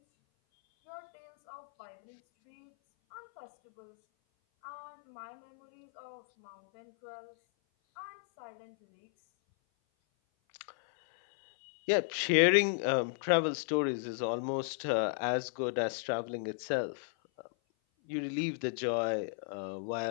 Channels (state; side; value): silent; right; 55 dB below the other